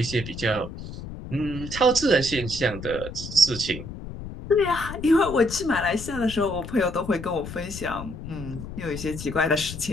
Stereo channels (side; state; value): left; noise; rumble, 10 dB below the sound